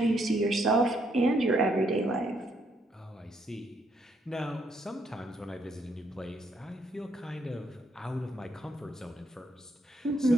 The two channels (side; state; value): both; normal; correlation 0.73